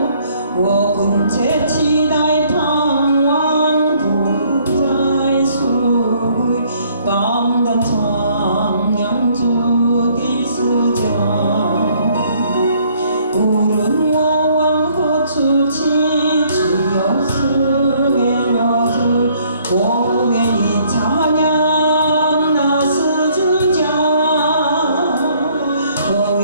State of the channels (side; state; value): both; inverted; correlation -0.64